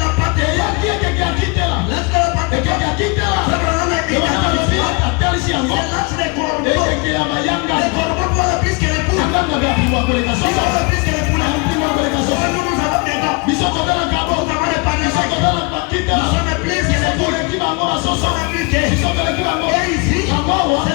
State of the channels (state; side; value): quieter; right; 29.9 dB